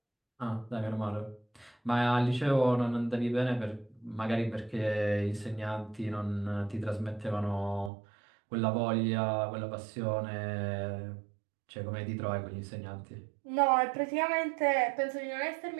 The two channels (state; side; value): drops out; left; at 7.9 s